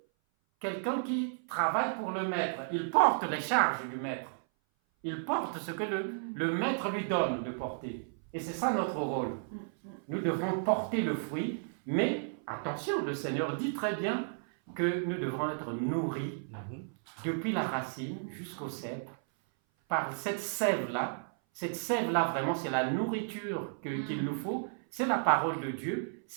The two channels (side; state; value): left; silent; 56 dB below the other